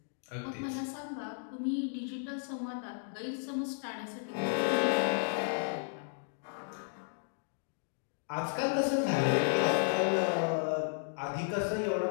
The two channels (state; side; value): silent; right; digital silence